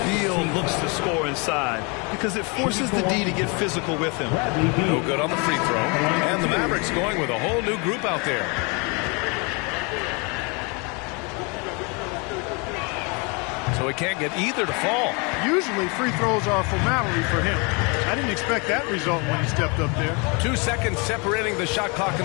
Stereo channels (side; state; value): right; quieter; 31.4 dB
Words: Beal looks to score inside because it forces the D to get physical with him. No good on the free throw. And the Mavericks going with a whole new group out there. So he can't get either to fall. Usually free throws are a formality for him. I didn't expect that result when he stepped up there. 2 seconds separating the shot clock and